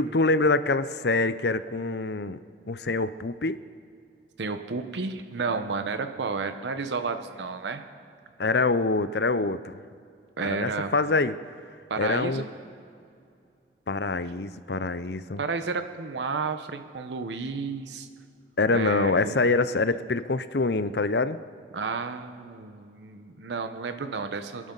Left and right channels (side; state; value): both; normal; correlation 0.02